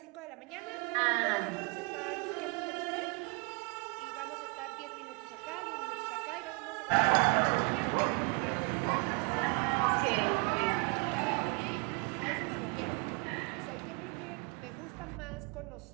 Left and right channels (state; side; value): quieter; left; 33.2 dB